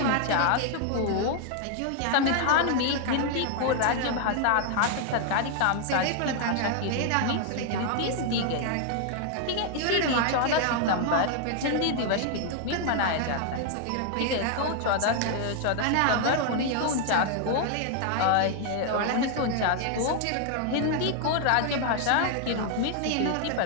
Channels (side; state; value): both; different; correlation 0.00